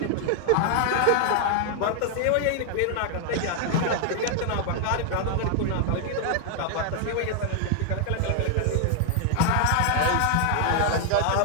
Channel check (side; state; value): both; different; correlation 0.00